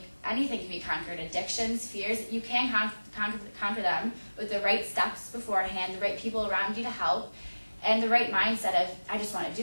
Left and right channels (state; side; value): inverted; both; correlation -1.00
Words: Anything can be conquered. Addictions, fears, you can conquer them with the right steps beforehand, the right people around you to help, and the right mindset of, I just want to